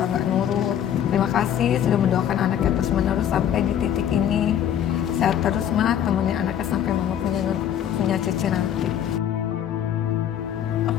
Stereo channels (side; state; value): right; quieter; 9.9 dB